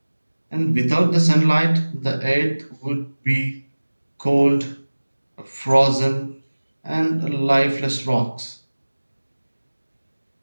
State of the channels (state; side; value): inverted; both; correlation -1.00